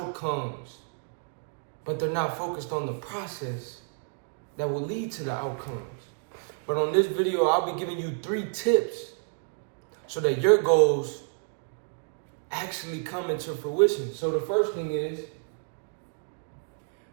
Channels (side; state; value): left; silent; digital silence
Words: but they're not focused on the process that will lead to the outcomes. But on this video, I'll be giving you 3 tips so that your goals actually come into fruition. So the first thing is,